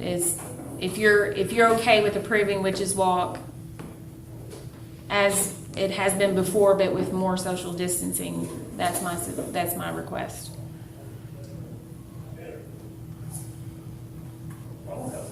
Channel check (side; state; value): both; identical; correlation 1.00